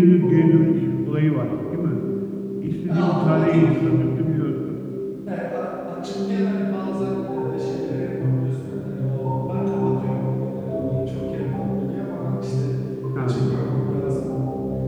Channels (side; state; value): both; identical; correlation 1.00